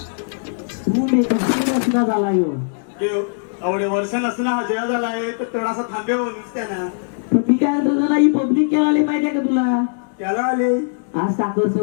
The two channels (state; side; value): silent; right; digital silence